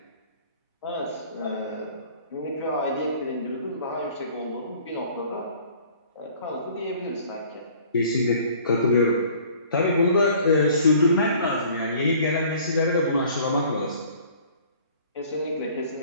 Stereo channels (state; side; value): inverted; both; correlation -0.52